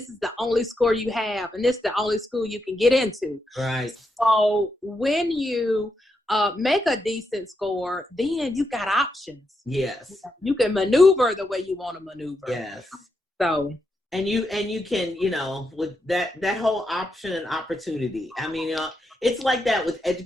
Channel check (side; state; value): both; normal; correlation 0.83